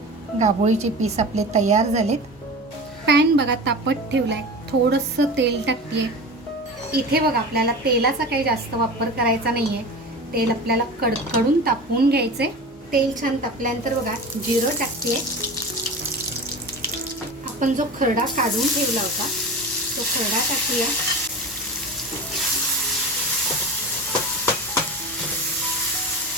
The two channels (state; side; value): normal; both; correlation 0.31